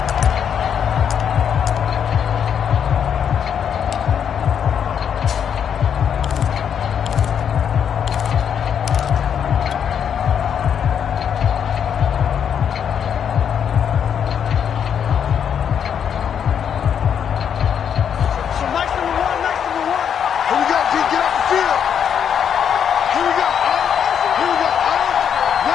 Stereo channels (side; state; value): right; quieter; 8.1 dB